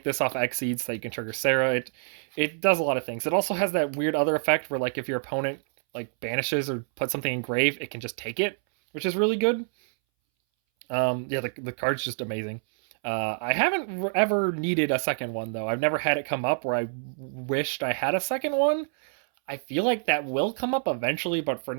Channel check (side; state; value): left; silent; 60 dB below the other